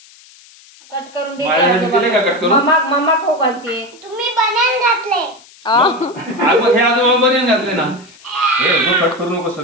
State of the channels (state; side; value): noise; left; hiss, 25 dB below the sound